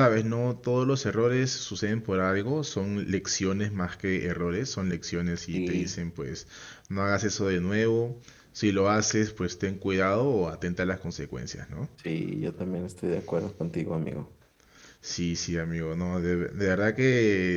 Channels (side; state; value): both; identical; correlation 1.00